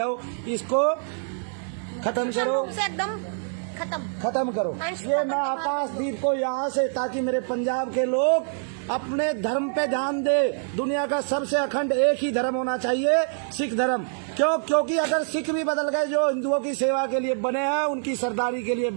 इसको खत्म करो, एकदम खत्म करो। ये मैं आकाशदीप को यहाँ से, ताकि मेरे पंजाब के लोग अपने धर्म पे ध्यान दे। दुनिया का सबसे अखंड एक ही धर्म होना चाहिए, सिख धर्म। क्यों? क्योंकि अगर सिख भी बदल गए, जो हिंदुओं की सेवा के लिए बने हैं, उनकी सरदारी के लिए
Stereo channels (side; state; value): left; silent; digital silence